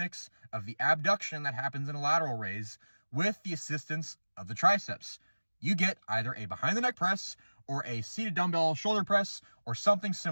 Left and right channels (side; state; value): both; inverted; correlation -1.00